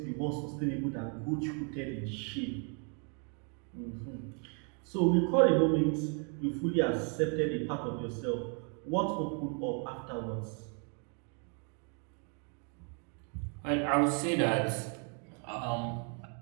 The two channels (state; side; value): quieter; left; 39.4 dB